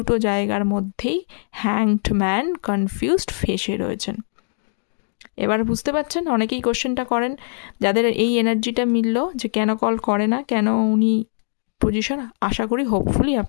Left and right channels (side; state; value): right; silent; digital silence